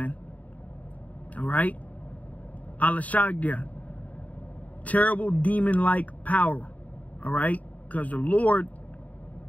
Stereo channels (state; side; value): late; right; 0.071 ms